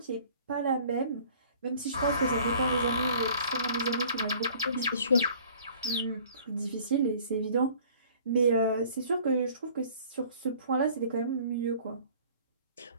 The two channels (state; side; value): inverted; both; correlation -0.52